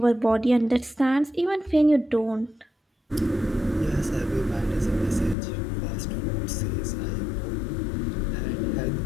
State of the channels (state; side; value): drops out; right; at 5.4 s